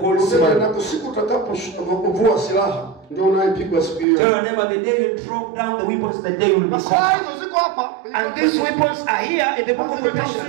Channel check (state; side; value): drops out; left; at 4.0 s